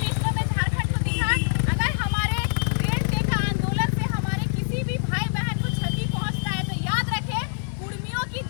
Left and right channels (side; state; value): right; silent; digital silence